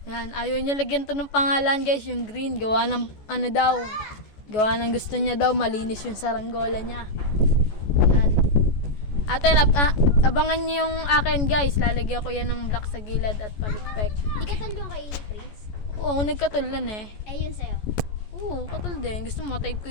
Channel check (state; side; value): late; right; 14 ms